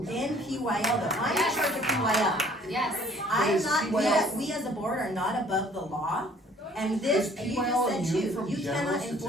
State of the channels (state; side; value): normal; both; correlation 0.56